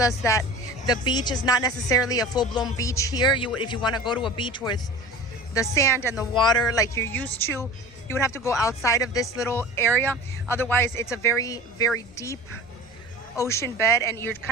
that the beach is not necessarily a full-blown beach here. If you want to go to a beach with the sand and the water like you're used to, you would have to go outside of this little area. Otherwise, it's a very, very deep ocean bed and you're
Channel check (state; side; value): noise; right; rumble, 28 dB below the sound